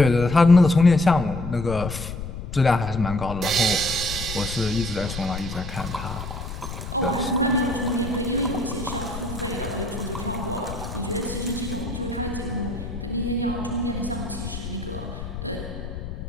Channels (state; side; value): noise; left; rumble, 8 dB below the sound